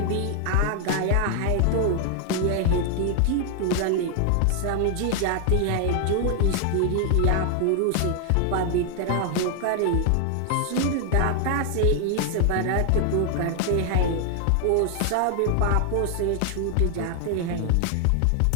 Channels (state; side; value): different; both; correlation 0.00